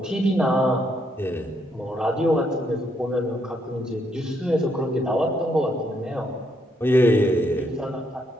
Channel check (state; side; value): normal; both; correlation 0.74